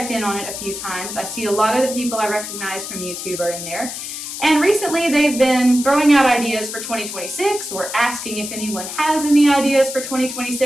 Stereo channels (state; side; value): noise; left; hiss, 7 dB below the sound